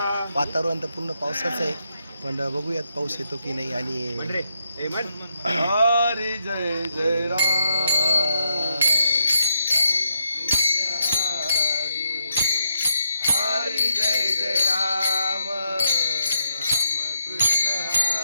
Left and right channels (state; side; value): inverted; both; correlation -0.79